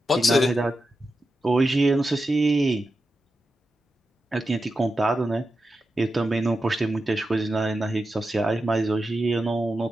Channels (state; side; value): normal; both; correlation 0.90